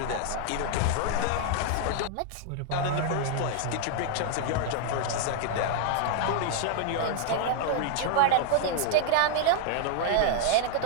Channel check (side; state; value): both; different; correlation -0.01